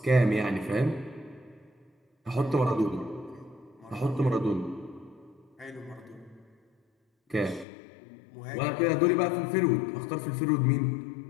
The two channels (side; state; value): right; drops out; at 7.7 s